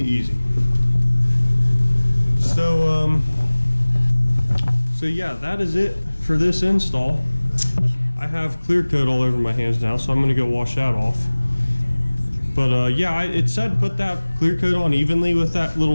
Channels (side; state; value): both; inverted; correlation -1.00